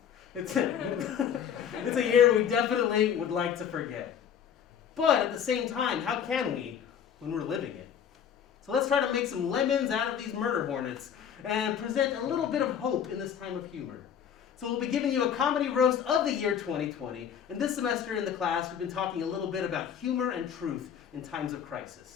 It's a year we definitely would like to forget. But at the same time, how can we when we're living it? So let's try to make some lemons out of these murder hornets and present a little bit of hope in this time of humor. So we'll be giving you a comedy roast of the year 2020. And this semester in the class, we've been talking a little bit about humor and truth in times of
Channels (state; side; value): quieter; right; 8.4 dB